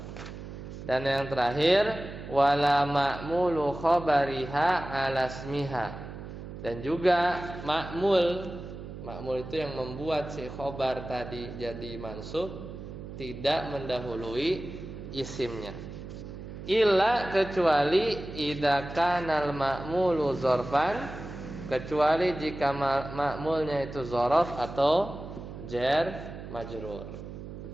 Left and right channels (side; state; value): right; noise; hum, 11 dB below the sound